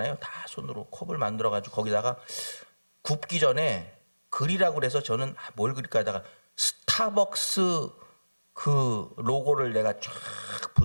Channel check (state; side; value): inverted; both; correlation -1.00